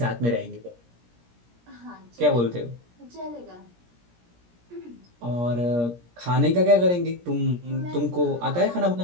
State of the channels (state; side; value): late; left; 17 ms